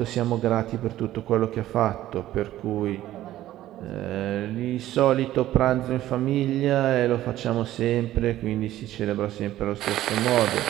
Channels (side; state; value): left; quieter; 14.0 dB